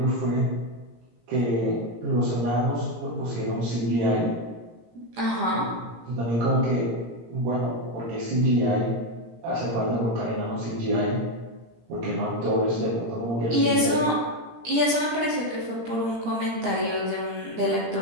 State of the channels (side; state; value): left; late; 17 ms